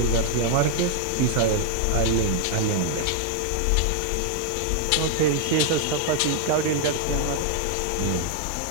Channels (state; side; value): different; both; correlation 0.00